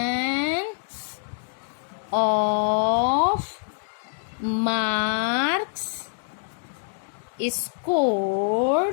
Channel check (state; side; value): silent; right; digital silence